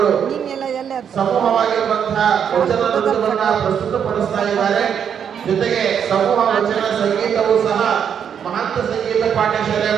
ಸಮೂಹವಾಗಿರುವಂತಹ ವಚನ ನೃತ್ಯವನ್ನ ಪ್ರಸ್ತುತಪಡಿಸ್ತಾ ಇದ್ದಾರೆ. ಜೊತೆಗೆ ಸಮೂಹ ವಚನ ಸಂಗೀತವೂ ಸಹ ಮಹಂತ ಸಂಗೀತ ಪಾಠಶಾಲೆಯ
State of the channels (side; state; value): left; quieter; 8.0 dB